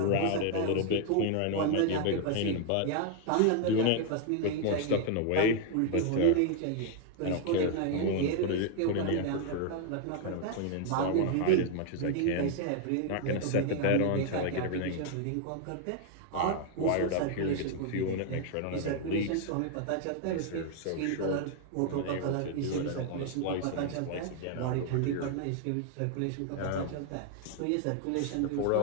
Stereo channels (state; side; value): different; both; correlation 0.00